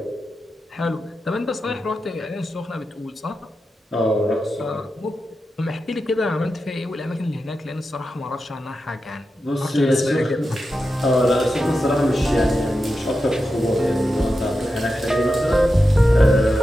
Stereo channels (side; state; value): both; normal; correlation 0.90